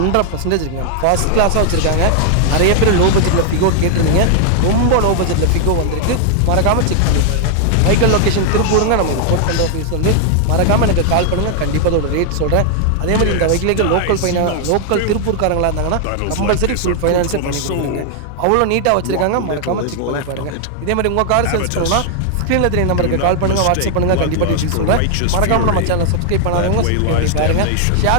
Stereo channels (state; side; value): different; both; correlation 0.00